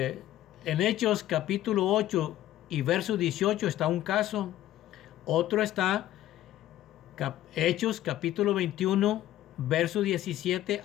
Hechos capítulo 8 y verso 18 está un caso. Otro está Hechos capítulo 21, verso 17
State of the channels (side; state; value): right; quieter; 13.6 dB